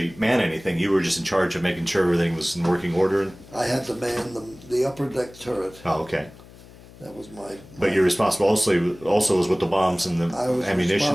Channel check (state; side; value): noise; left; hum, 21 dB below the sound